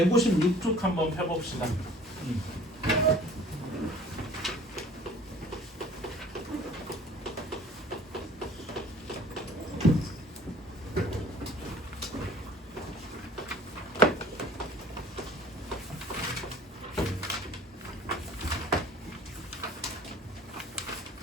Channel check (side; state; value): both; normal; correlation 0.49